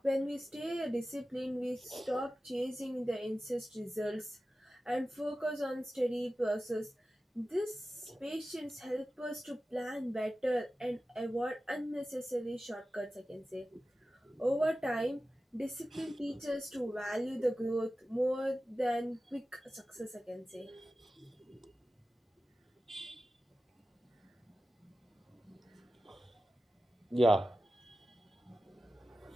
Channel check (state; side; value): normal; both; correlation 0.94